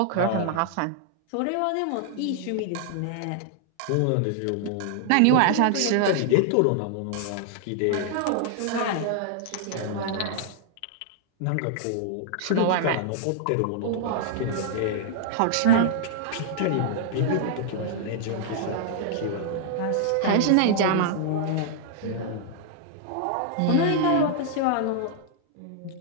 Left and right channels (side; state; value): both; different; correlation -0.01